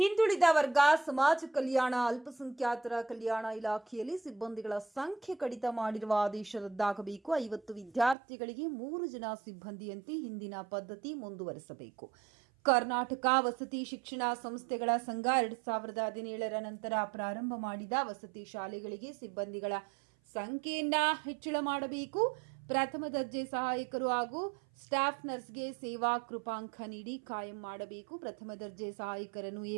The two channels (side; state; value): left; drops out; at 8.2 s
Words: ವರ್ಗ, ಸಮಾಜ ಕಲ್ಯಾಣ, ಅಲ್ಪಸಂಖ್ಯಾತರ ಕಲ್ಯಾಣ ಇಲಾಖೆಯಲ್ಲಿ ಸಿಬ್ಬಂದಿಗಳ ಸಂಖ್ಯೆ ಕಡಿತ ಮಾಡಿರುವ ಆದೇಶ ರದ್ದಾಗಬೇಕು. 50 ವಿದ್ಯಾರ್ಥಿಗಳಿಗೆ 3 ಜನ ಸಿಬ್ಬಂದಿಯಂತೆ ಹಿಂದಿನ ಪದ್ಧತಿ ಮುಂದುವರೆಸಬೇಕು. ಕರ್ನಾಟಕ ವಸತಿ ಶಿಕ್ಷಣ ಸಂಸ್ಥೆಗಳ ಸಂಘ 2017ರ ನಂತರ ಪ್ರಾರಂಭ ಮಾಡಿದ ವಸತಿ ಶಾಲೆಗಳಿಗೆ ಸಿಬ್ಬಂದಿಗಳ ಸಂಖ್ಯೆಯನ್ನ ಹೆಚ್ಚಳ ಮಾಡಬೇಕು. ಪ್ರಥಮ ದರ್ಜೆ ಸಹಾಯಕರು ಹಾಗೂ ಸ್ಟಾಫ್ ನರ್ಸ್ಗೆ ಸೇವಾ ಕೃಪಾಂಕ ನೀಡಿ ಕಾಯಂ ಮಾಡಬೇಕು. ಪ್ರಥಮ ದರ್ಜೆ ಸಹಾಯಕರನ್ನು